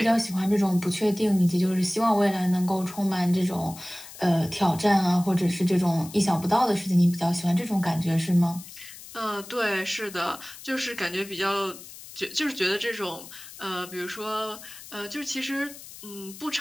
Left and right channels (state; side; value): noise; left; hiss, 16 dB below the sound